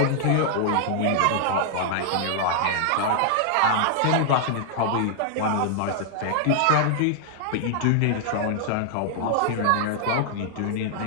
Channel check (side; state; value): both; different; correlation -0.01